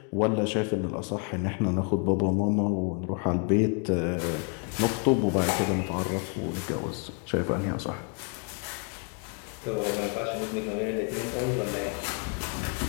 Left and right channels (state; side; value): quieter; right; 37.6 dB